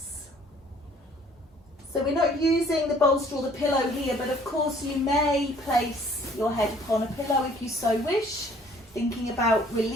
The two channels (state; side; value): normal; both; correlation 0.57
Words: So we're not using the bolster or the pillow here, but of course you may place your head upon a pillow if you so wish, thinking about